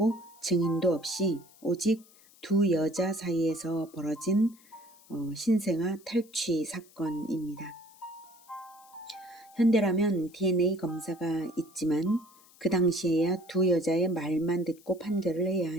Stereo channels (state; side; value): noise; left; hiss, 26 dB below the sound